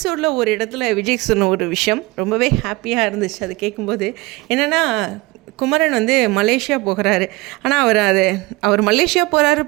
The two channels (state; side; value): quieter; left; 21.9 dB